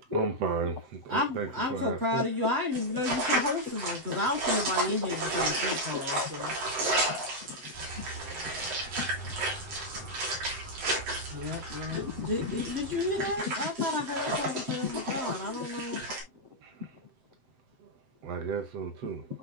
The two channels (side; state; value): left; late; 7.8 ms